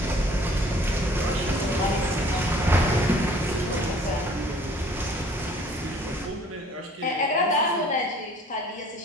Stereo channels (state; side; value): normal; both; correlation 0.54